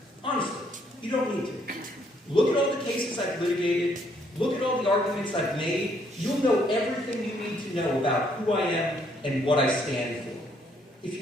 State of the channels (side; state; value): both; normal; correlation 0.69